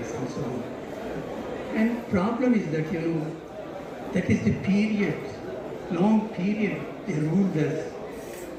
and so on. And problem is that, that is the period, long period they ruled us,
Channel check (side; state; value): both; identical; correlation 1.00